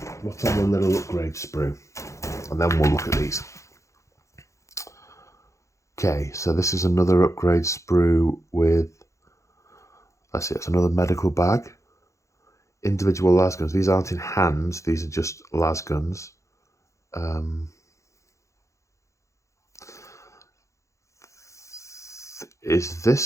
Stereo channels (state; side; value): late; right; 0.15 ms